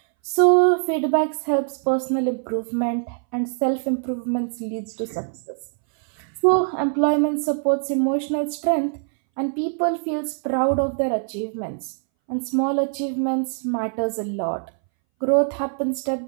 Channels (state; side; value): silent; left; 62 dB below the other